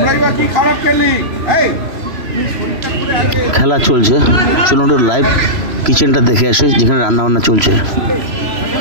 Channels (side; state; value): left; late; 3.0 ms